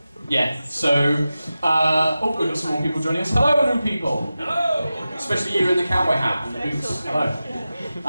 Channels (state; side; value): inverted; both; correlation -0.94